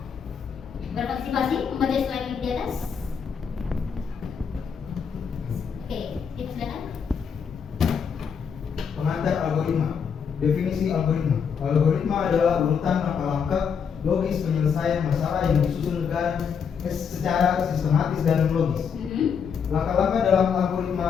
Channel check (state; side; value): quieter; right; 6.8 dB